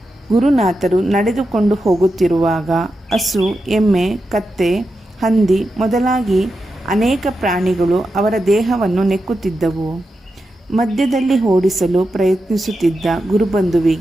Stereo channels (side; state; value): both; normal; correlation 0.89